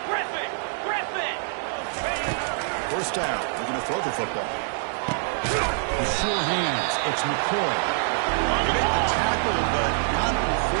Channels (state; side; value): silent; left; digital silence